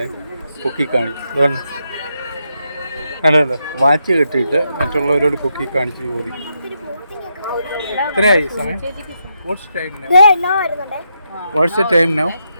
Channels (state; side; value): inverted; both; correlation -0.82